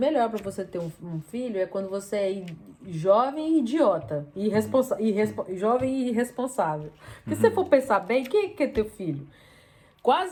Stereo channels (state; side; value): identical; both; correlation 1.00